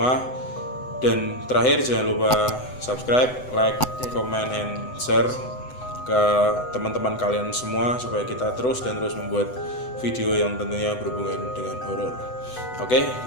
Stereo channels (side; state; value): right; late; 8.0 ms